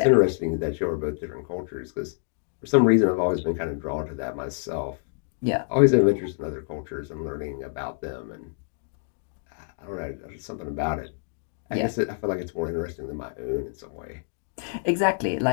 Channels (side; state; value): right; silent; digital silence